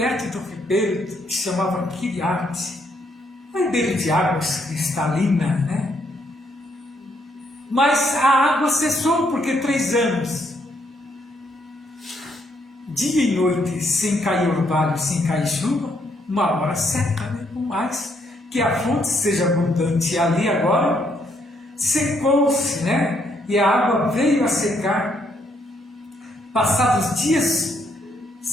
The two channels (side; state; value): both; normal; correlation 0.73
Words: do ribeiro que se chamava Quiriate, um ribeiro de águas cristalinas, né? Mas a água cessou, porque 3 anos, dia e noite, sem cair orvalho, sem cair chuva, uma hora seca, né? Por mais que a fonte seja abundante. E ali agora secou-se, né? E a água veio a secar. Passados dias,